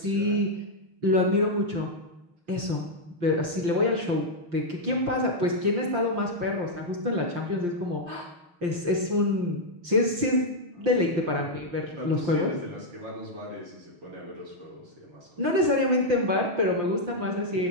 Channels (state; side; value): late; left; 5.8 ms